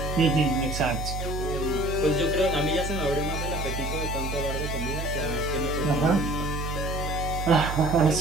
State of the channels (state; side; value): noise; right; hum, 4 dB below the sound